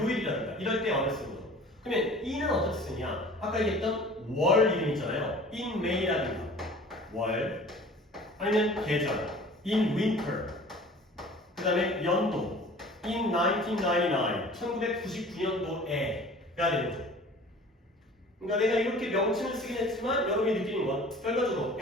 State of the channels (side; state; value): both; normal; correlation 0.46